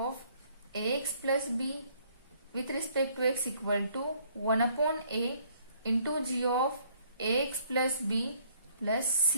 A x plus B with respect to x equal to 1/a into g of A x plus b plus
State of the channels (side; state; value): both; inverted; correlation -0.63